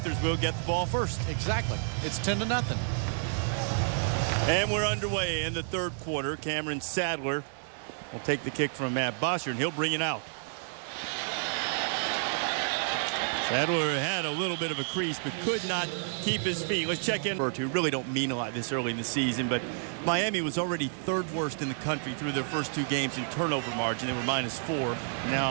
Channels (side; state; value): left; silent; digital silence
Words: will get the ball first. Exactly. It's 10-0. And we're underway in the third quarter. Cameron Sadler will take the kick from Matt Bosher, and he'll bring it out. Sadler had a little bit of a crease, but could not keep his feet. Let's check in. Who really don't mean a lot this early in the season, but Miami was already third worst in the country through their first 2 games in turnover margin. They were -4.